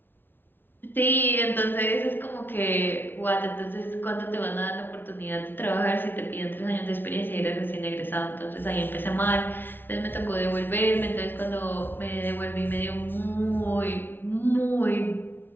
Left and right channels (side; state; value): right; late; 0.098 ms